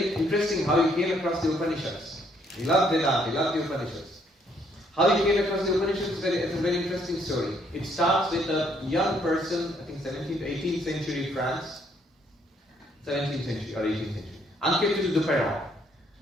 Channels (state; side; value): normal; both; correlation 0.68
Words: interesting how he came across the Upanishads. He loved Vedanta, he loved the Upanishads. How he came across the Upanishads is a very interesting story. It starts with a young person, I think 17th to 18th century France, 17th century or 18th century, Anquetil Duperron.